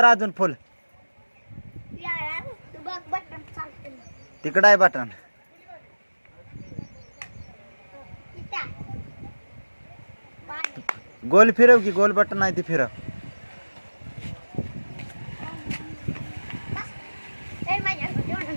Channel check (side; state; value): both; inverted; correlation -1.00